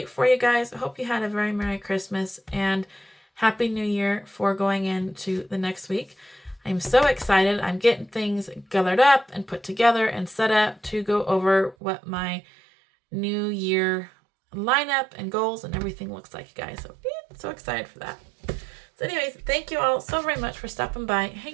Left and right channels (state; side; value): drops out; left; at 11.8 s